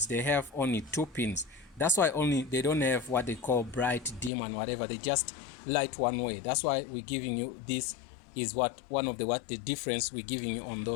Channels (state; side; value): drops out; right; at 4.3 s